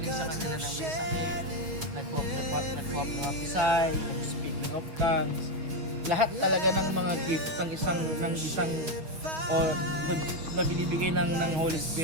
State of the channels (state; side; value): late; left; 6.3 ms